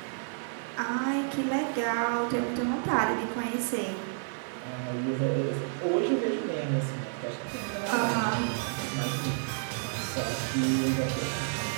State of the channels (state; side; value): silent; left; 58 dB below the other